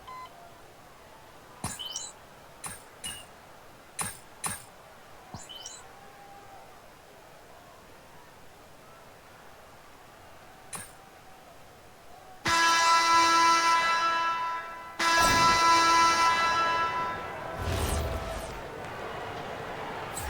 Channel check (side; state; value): both; identical; correlation 1.00